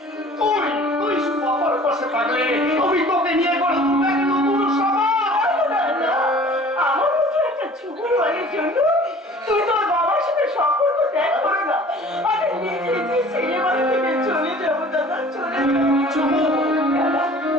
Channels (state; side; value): normal; both; correlation 0.48